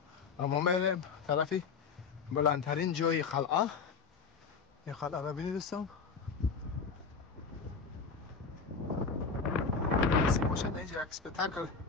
اما میریم طرفی بلندترین جای قلعه. این قلعه را ببینید دوستان. نصیب باشد اینجا یک سپتاکل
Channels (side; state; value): right; quieter; 5.3 dB